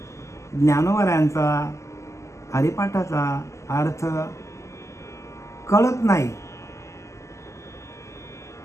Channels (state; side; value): late; right; 0.14 ms